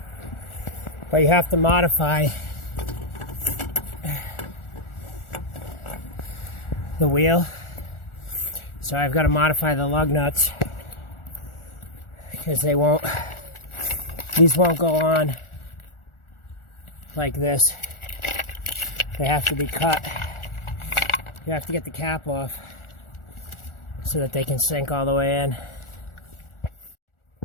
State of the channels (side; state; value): right; late; 1.4 ms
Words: but you have to modify the wheel. So I've got to modify the lug nuts because these won't go on like this. They have to be cut. You have to get the cap off so that they can sink all the way in.